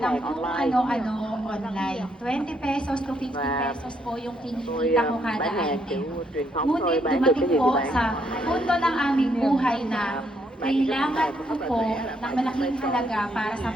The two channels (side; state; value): both; normal; correlation 0.73